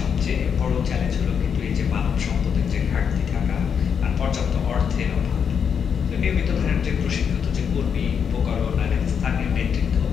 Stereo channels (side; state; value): right; quieter; 7.2 dB